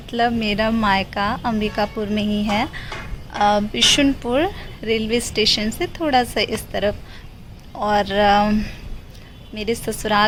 मेरा मायका अंबिकापुर में ही है, बिशुनपुर रेलवे स्टेशन से थोड़ा सा इस तरफ। और मेरे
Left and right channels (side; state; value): both; identical; correlation 1.00